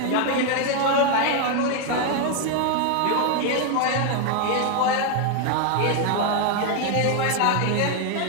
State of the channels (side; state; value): both; different; correlation 0.01